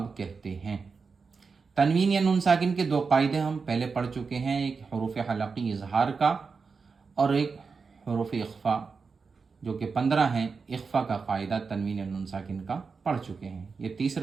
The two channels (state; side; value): quieter; left; 5.0 dB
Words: कहते हैं। तनवीन या नून साकिन के दो कायदे हम पहले पढ़ चुके हैं, एक हरूफ हलक़ी इजहार का और एक हरूफ इख्फा जो कि 15 हैं। इख्फा का कायदा तनवीन या नून साकिन का पढ़ चुके हैं। ये